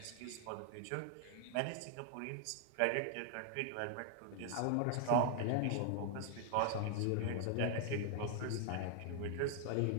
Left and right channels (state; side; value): different; both; correlation 0.00